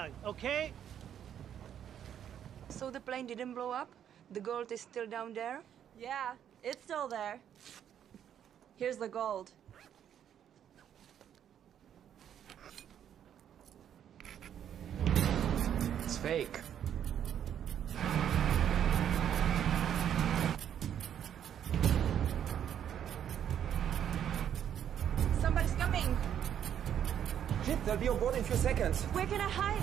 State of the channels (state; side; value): quieter; left; 9.5 dB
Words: okay? So the plane didn't blow up? The gold is still down there? Yeah, it's still there. Here's the gold. It's fake. Somebody's coming! Shit, they'll be on board in a few seconds. Where can I